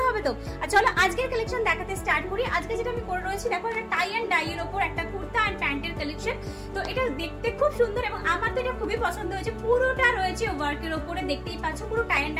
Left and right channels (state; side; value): identical; both; correlation 1.00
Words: হবে। তো আর চলো আজকের কালেকশন দেখাতে স্টার্ট করি। আজকে যেটা আমি করে রয়েছি, দেখো একটা টাই অ্যান্ড ডাই এর উপর একটা কুর্তা আর প্যান্টের কালেকশন। তো এটা দেখতে খুব সুন্দর এবং আমার তো এটা খুবই পছন্দ হয়েছে। পুরোটা রয়েছে ওয়ার্কের উপরে, দেখতেই পাচ্ছ, পুরো টাই অ্যান্ড